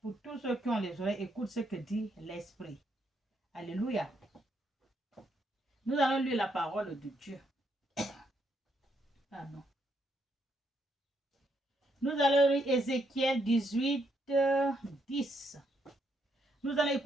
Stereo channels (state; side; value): normal; both; correlation 0.76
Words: Pour tous ceux qui ont les oreilles, écoute ce que dit l'Esprit. Alléluia. Nous allons lire la parole de Dieu. Pardon. Nous allons lire Ézéchiel 18, 10. Nous allons